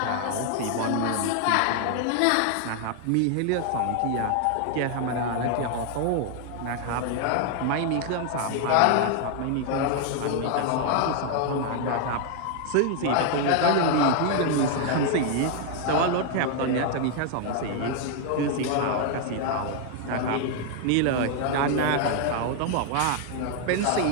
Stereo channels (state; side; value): different; both; correlation 0.00